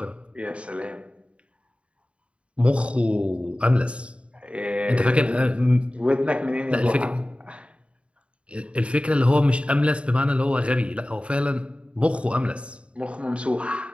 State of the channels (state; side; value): late; left; 0.059 ms